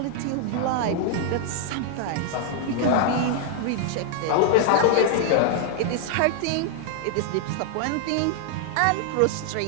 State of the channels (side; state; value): both; different; correlation -0.01